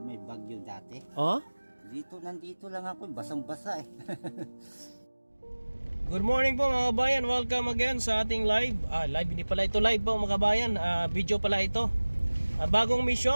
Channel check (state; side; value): inverted; both; correlation -1.00